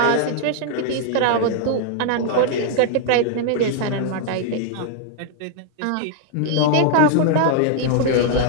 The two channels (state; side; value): different; both; correlation 0.00